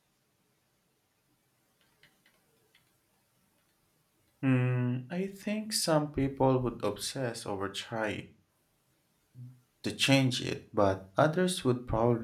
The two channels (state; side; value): identical; both; correlation 1.00